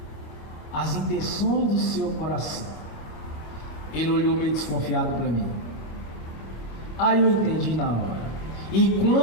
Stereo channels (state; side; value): late; right; 25 ms